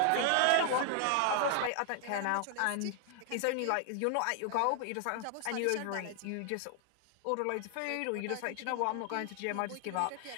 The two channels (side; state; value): both; different; correlation 0.00